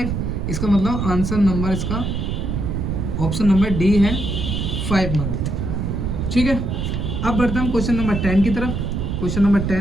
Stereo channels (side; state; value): right; noise; rumble, 2 dB below the sound